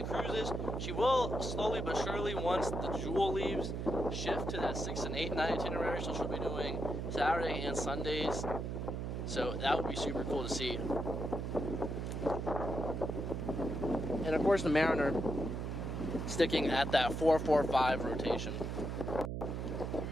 cruises. She will slowly but surely, once the Jewel leaves, shift to that 6- and 8-night itinerary. So she'll be doing Saturday and Sundays. So that would be super cool to see. And of course the Mariner sticking at that 4-4-5 rotation.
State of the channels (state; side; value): noise; right; hum, 3 dB below the sound